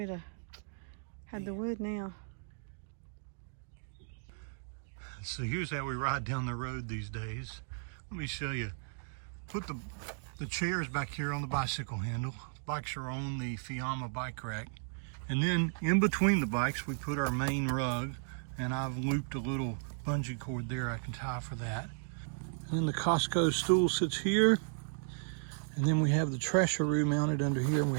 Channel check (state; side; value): silent; left; digital silence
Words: have had the wood now. So here's how we ride down the road these days. Let me show you. Put the chairs back here on the bicycle handle. Bikes are on the Fiamma bike rack. And then in between the bikes, we put our main rug, and I've looped a little bungee cord there I can tie for that. And then the Costco stool sits here. And then we have the trasheroo mounted under here, and we